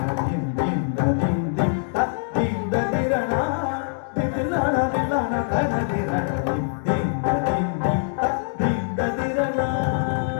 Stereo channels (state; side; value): silent; right; 63 dB below the other